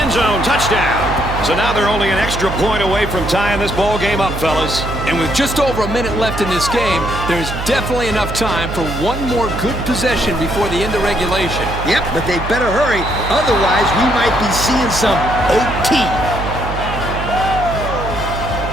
End zone, touchdown. So now they're only an extra point away from tying this ball game up, fellas. And with just over a minute left in this game, there's definitely enough time for one more good possession before the end of regulation. Yep, but they better hurry. Otherwise, we might be seeing some OT.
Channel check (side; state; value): right; noise; hum, 7 dB below the sound